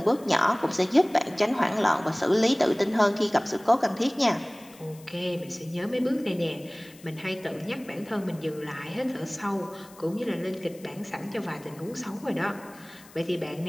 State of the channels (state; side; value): noise; left; hiss, 23 dB below the sound